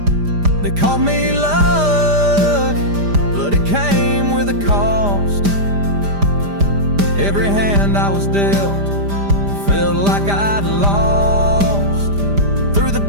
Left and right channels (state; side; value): late; left; 5.0 ms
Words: They called me luck, but it came with a cost. Every hand I was dealt felt like I'd lost. Through the